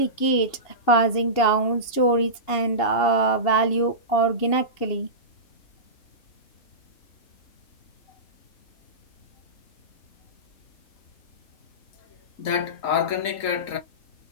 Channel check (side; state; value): right; late; 2.8 ms